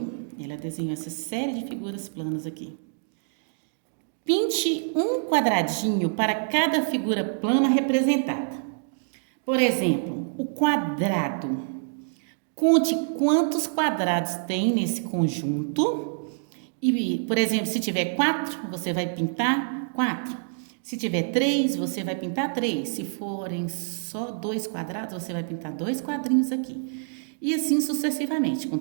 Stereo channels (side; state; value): left; silent; digital silence